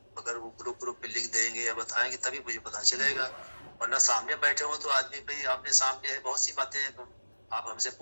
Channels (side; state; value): both; inverted; correlation -1.00